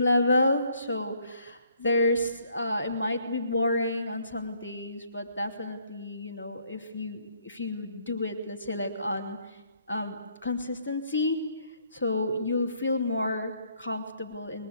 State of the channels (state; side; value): inverted; both; correlation -0.67